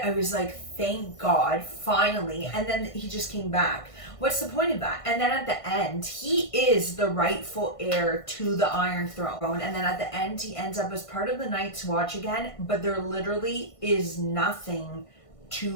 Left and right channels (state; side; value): late; right; 1.5 ms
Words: I was like, thank God, finally. And then he just came back. What's the point of that? And then at the end, he is the rightful heir to the Iron Throne. And then at the end, he ends up as part of the Night's Watch again. But there literally is nothing